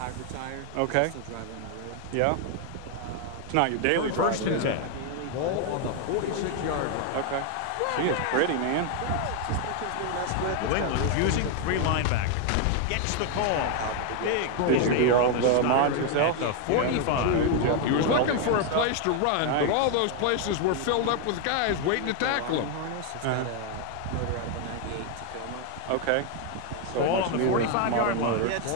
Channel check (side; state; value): both; different; correlation 0.01